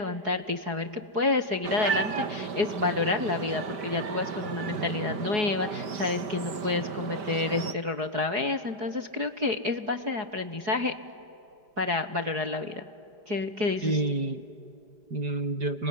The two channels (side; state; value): left; late; 5.1 ms